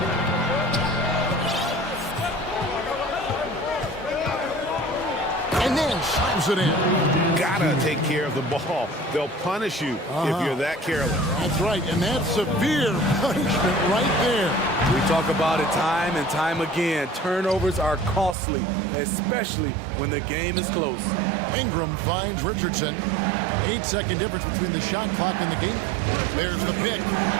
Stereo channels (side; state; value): left; drops out; at 18.4 s